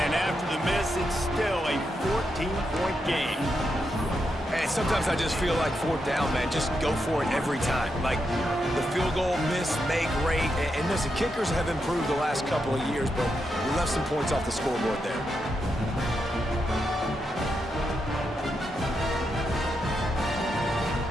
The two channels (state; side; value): normal; both; correlation 0.84